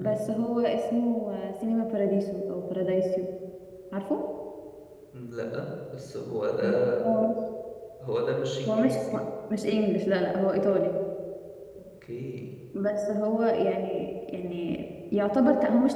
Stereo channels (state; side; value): identical; both; correlation 1.00